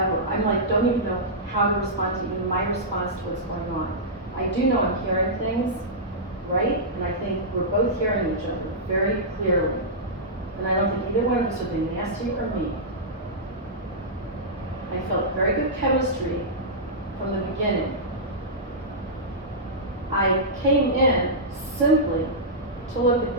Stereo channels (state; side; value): normal; both; correlation -0.13